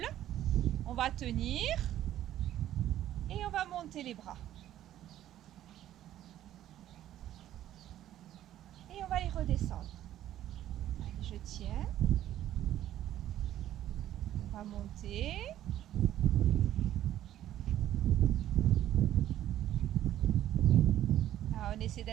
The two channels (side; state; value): left; quieter; 12.4 dB